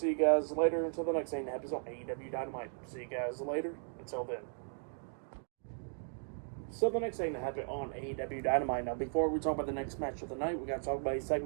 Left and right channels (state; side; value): silent; left; digital silence